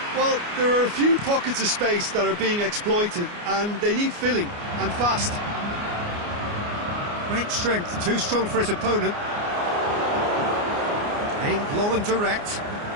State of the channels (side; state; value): left; late; 29 ms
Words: Well, there are a few pockets of space that are being exploited, and they need filling, and fast. Great strength, too strong for his opponent. Aimed long and direct.